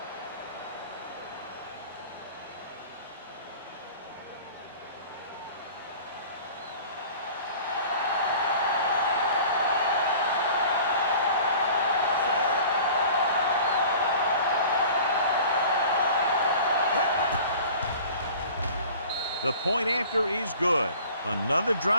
The point after is good. Another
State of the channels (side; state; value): both; inverted; correlation -0.44